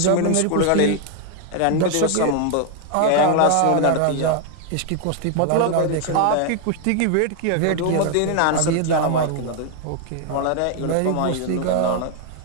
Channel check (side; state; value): both; different; correlation 0.00